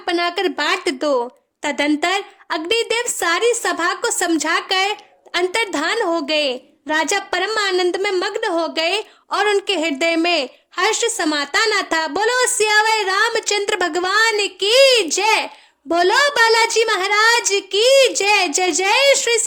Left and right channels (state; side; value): identical; both; correlation 1.00